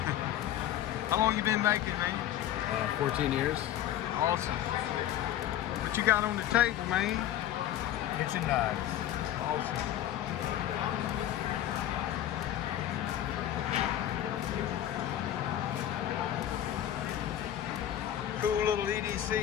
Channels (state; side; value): quieter; right; 11.9 dB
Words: How long you been making, man? 14 years. Awesome. What you got on the table, man? Kitchen knives. Awesome. Cool little